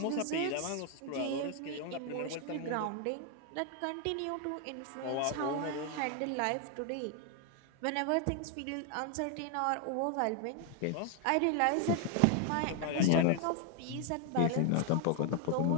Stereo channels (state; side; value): different; both; correlation 0.00